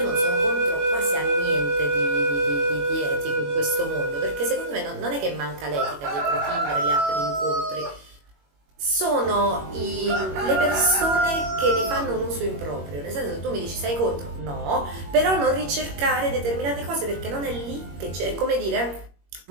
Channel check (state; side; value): late; left; 21 ms